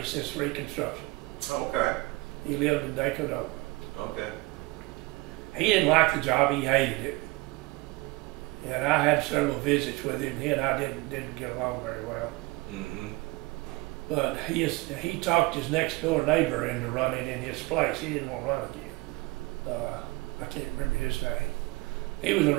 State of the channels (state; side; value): quieter; left; 22.4 dB